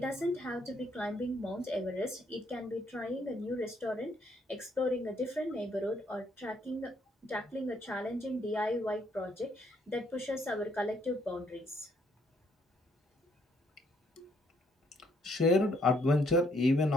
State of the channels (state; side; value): normal; both; correlation 0.69